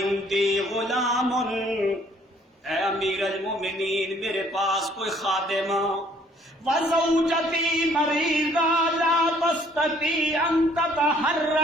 غلام، اے امیر المومنین میرے پاس کوئی خادم، وزوجتی مریضہ لا تستطیع ان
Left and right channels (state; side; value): normal; both; correlation 0.61